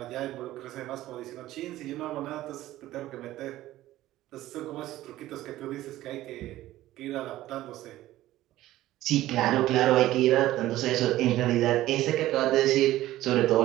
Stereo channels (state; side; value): quieter; left; 15.2 dB